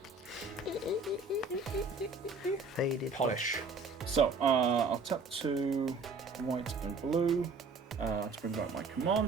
Faded. Polish. So I'll tap 2 white and blue to bring back my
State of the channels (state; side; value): quieter; left; 4.0 dB